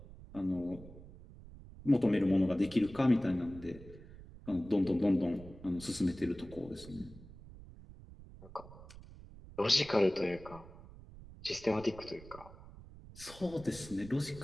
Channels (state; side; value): noise; right; rumble, 17 dB below the sound